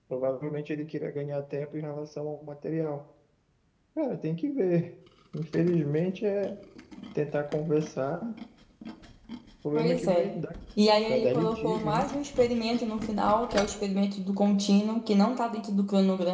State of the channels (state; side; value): identical; both; correlation 1.00